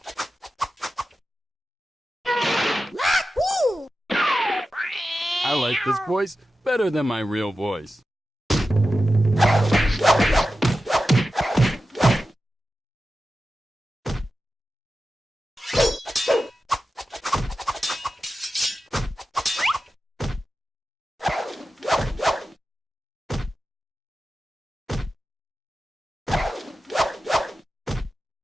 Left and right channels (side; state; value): both; normal; correlation 0.92